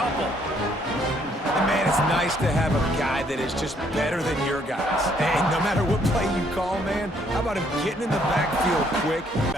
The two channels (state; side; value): normal; both; correlation 0.67